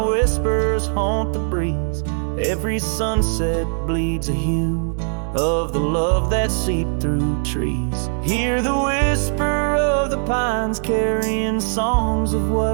whispers haunt the breeze. Every sunset bleeds a hue of the love that seeped through trees. Hear the whisper of the pines carrying songs of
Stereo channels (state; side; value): silent; left; digital silence